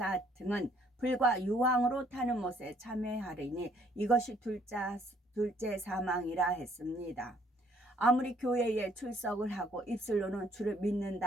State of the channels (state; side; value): normal; both; correlation 0.64